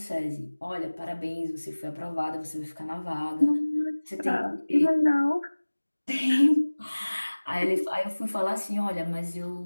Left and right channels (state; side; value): inverted; both; correlation -1.00